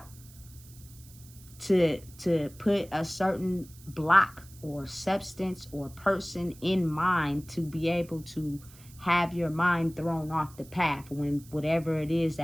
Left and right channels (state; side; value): noise; right; hiss, 22 dB below the sound